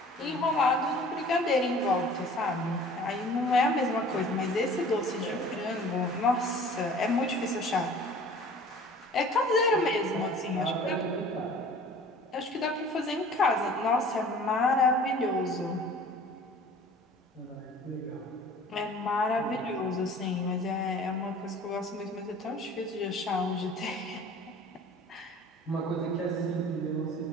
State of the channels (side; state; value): both; normal; correlation 0.47